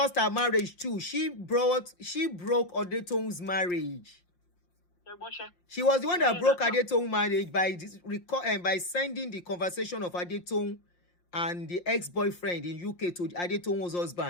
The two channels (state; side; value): late; right; 5.7 ms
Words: her marriage too. She broke Adetoun's marriage. She was the one that broke Adetoun's marriage by sending the conversation of Adetoun and the ex-boyfriend in UK to Adetoun's